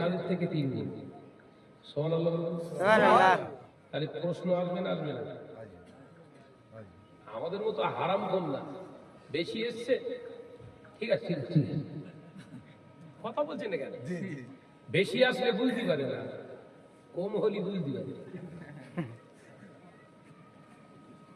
থেকে 3 গুণ। সুবহানাল্লাহ। তাহলে প্রশ্ন আসবে না? আসবে না? আমাদের মতো হারাম কোন না, বেশি এসছে, ঠিক আছে, কথা বলছেন না কেন? বেশি আসলে বুঝতে পারে না, কম হলে বুঝতে পারে।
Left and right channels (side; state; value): both; identical; correlation 1.00